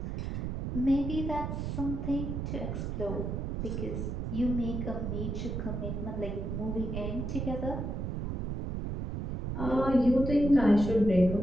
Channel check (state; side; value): noise; right; rumble, 3 dB below the sound